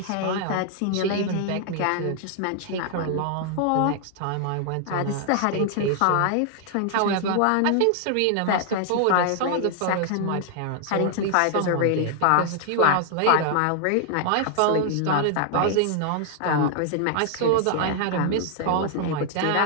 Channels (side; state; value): both; different; correlation 0.00